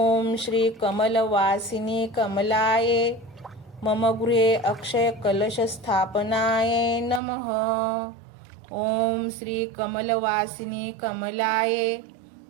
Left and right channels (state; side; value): drops out; left; at 7.2 s